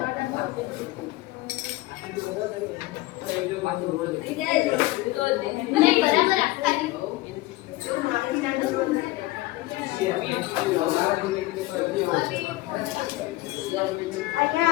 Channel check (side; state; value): right; quieter; 18.9 dB